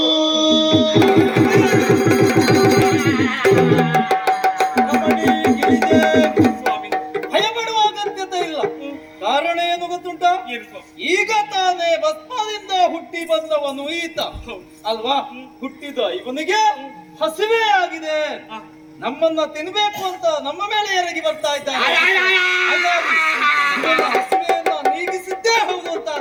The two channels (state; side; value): identical; both; correlation 1.00